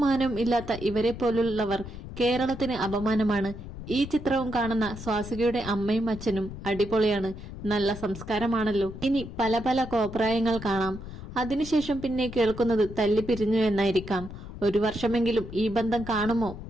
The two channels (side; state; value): left; noise; rumble, 11 dB below the sound